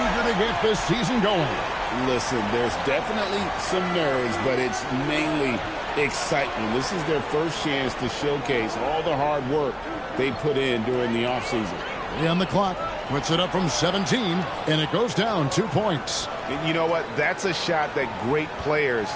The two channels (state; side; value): identical; both; correlation 1.00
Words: to get this season going. Listen, there's definitely some nerves, but it's mainly excitement. This is their first chance to showcase all the hard work they put in during the offseason. 3 on the clock. Puts it up from 17, and it goes down 2 points. And you know what? That's a shot that great players